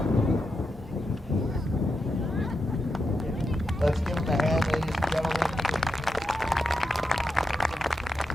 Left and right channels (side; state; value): both; normal; correlation 0.86